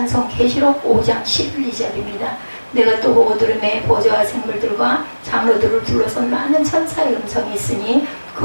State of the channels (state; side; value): inverted; both; correlation -1.00